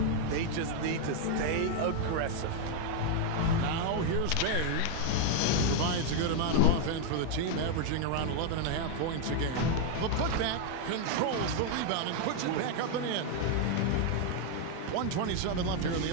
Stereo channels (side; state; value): both; different; correlation 0.01